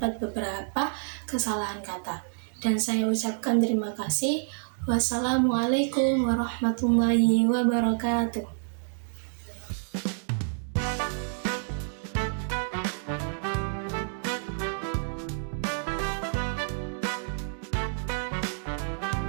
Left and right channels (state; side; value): silent; left; digital silence